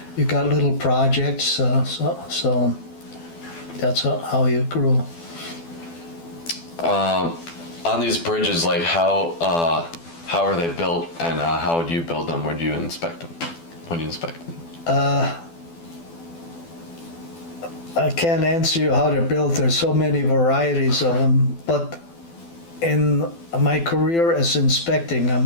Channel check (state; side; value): late; right; 12 ms